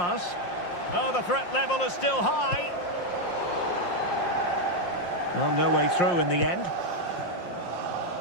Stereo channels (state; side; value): late; right; 5.6 ms